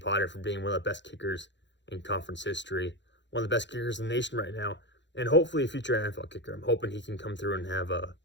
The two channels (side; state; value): right; late; 0.52 ms